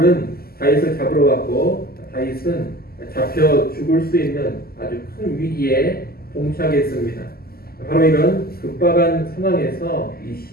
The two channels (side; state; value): right; late; 0.45 ms